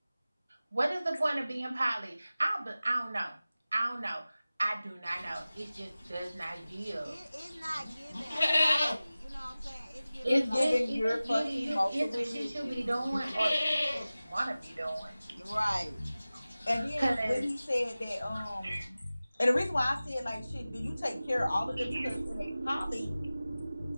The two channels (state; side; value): inverted; both; correlation -0.97